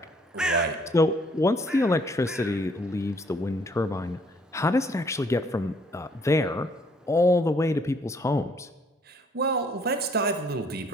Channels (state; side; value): normal; both; correlation 0.63